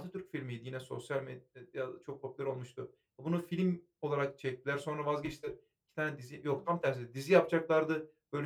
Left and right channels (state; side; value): identical; both; correlation 1.00